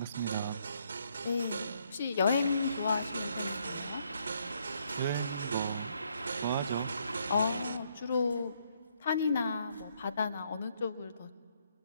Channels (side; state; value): both; inverted; correlation -0.72